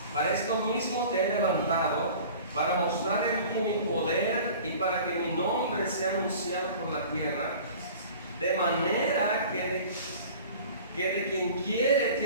para esto mismo te he levantado, para mostrar en ti mi poder y para que mi nombre sea anunciado por la tierra, de manera que de quien quiere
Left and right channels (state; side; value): inverted; both; correlation -0.43